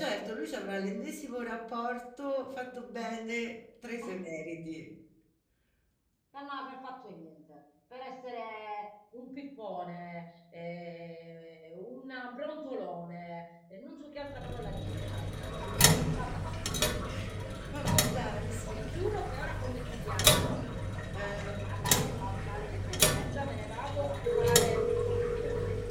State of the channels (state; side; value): identical; both; correlation 1.00